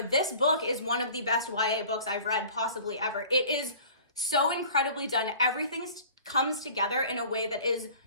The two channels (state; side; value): inverted; both; correlation -0.46